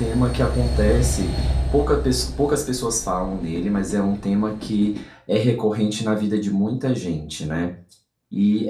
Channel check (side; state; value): both; identical; correlation 1.00